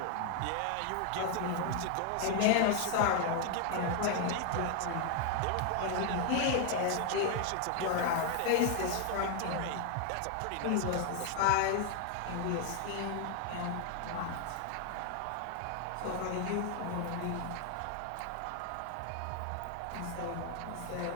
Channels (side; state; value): both; different; correlation 0.00